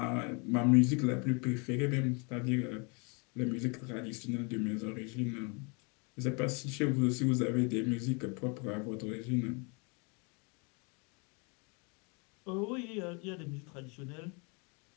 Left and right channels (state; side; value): quieter; right; 33.0 dB